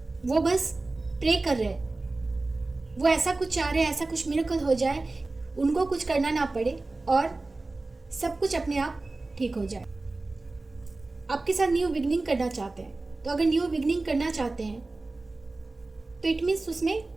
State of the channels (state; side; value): quieter; left; 3.2 dB